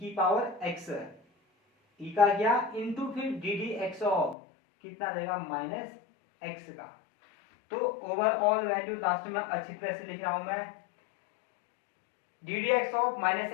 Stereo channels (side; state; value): right; drops out; at 4.4 s